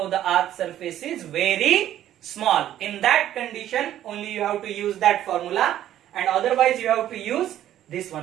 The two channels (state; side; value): quieter; left; 12.0 dB